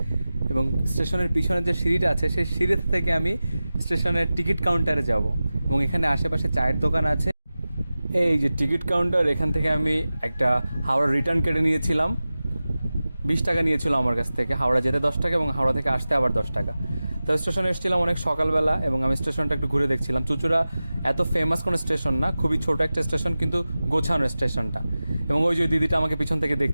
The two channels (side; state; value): both; inverted; correlation -0.96